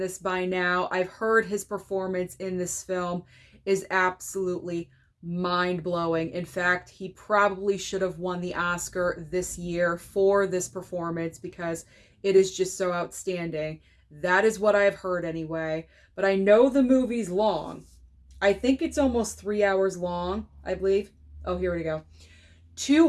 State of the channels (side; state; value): both; identical; correlation 1.00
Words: by now. I've heard his performance in this film is absolutely mind-blowing. In fact, he probably should have won the Oscar this year for this performance because it is just so outstanding. That is what I've heard anyway. But I know the movie's long. I think it's almost 3 hours long, I believe. Oh, here we go.